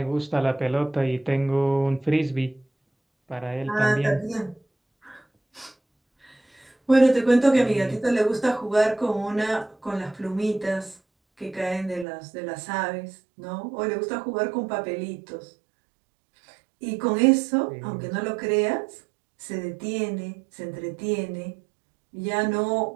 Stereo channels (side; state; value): left; drops out; at 12.1 s